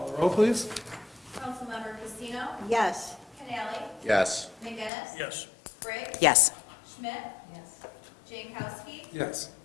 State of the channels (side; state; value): right; drops out; at 4.9 s